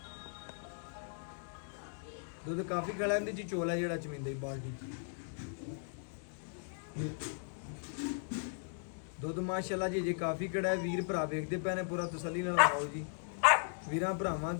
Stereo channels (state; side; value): silent; right; digital silence